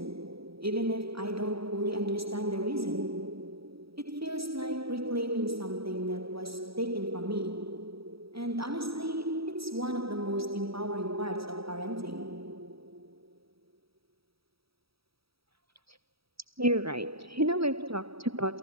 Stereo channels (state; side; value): late; left; 0.76 ms